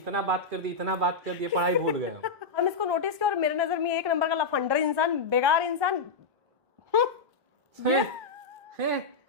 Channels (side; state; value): right; quieter; 4.1 dB